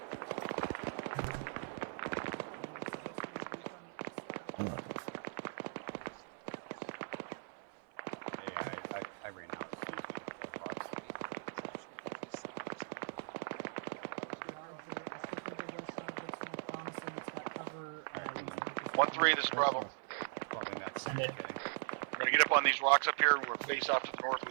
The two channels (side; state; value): left; silent; 51 dB below the other